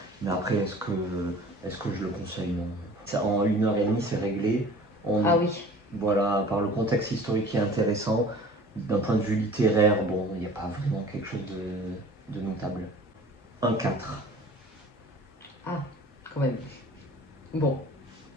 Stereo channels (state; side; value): normal; both; correlation 0.45